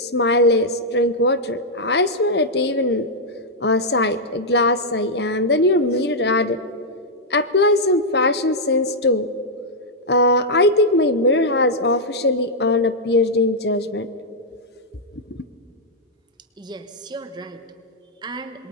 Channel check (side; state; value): both; normal; correlation -0.05